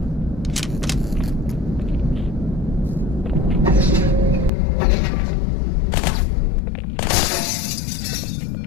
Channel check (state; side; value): drops out; right; at 4.5 s